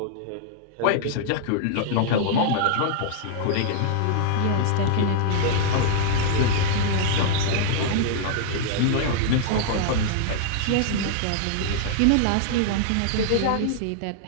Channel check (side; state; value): both; different; correlation -0.01